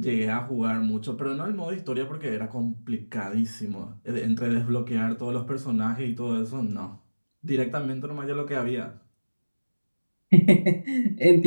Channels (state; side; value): inverted; both; correlation -1.00